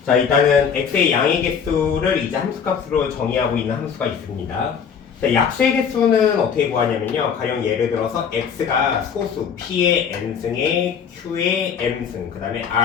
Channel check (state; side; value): quieter; right; 7.0 dB